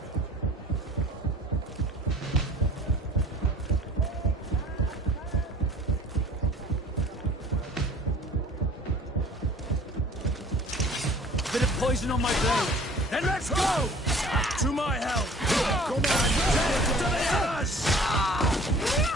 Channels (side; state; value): both; normal; correlation 0.49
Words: Bit of poison on my blade. Then let's go! To my help! Come on! Death to the others!